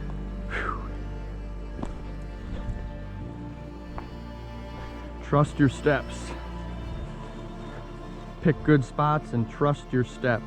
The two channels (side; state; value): both; identical; correlation 1.00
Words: Whew. Trust your steps. Pick good spots and trust your